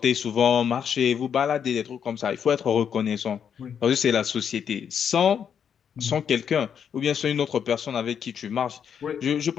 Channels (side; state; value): right; quieter; 7.8 dB